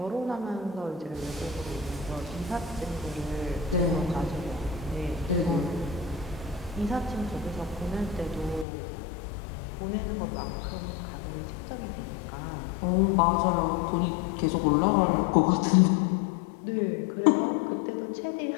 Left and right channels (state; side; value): drops out; right; at 8.7 s